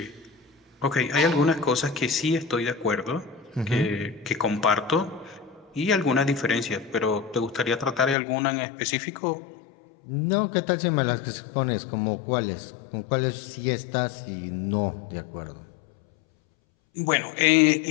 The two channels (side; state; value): right; drops out; at 8.2 s